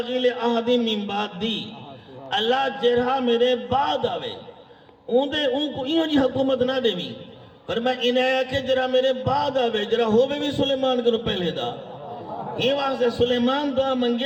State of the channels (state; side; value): identical; both; correlation 1.00